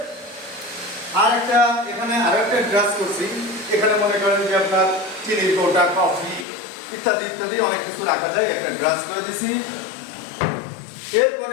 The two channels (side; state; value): right; drops out; at 6.5 s